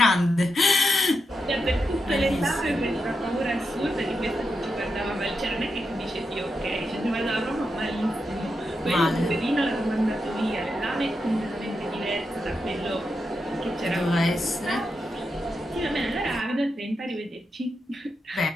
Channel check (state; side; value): normal; both; correlation 0.86